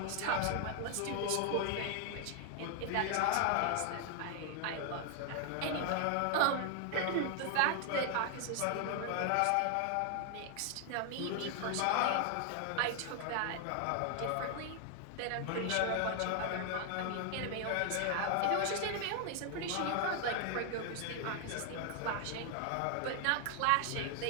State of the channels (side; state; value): both; different; correlation 0.00